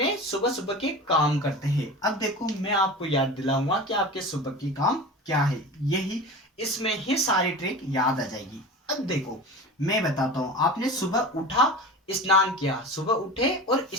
सुबह सुबह के काम करते हैं। अब देखो मैं आपको याद दिलाऊंगा कि आपके सुबह की काम क्या है, यही इसमें ही सारी ट्रिक याद आ जाएगी। अब देखो मैं बताता हूं, आपने सुबह उठा, स्नान किया, सुबह उठे और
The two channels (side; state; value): both; normal; correlation 0.32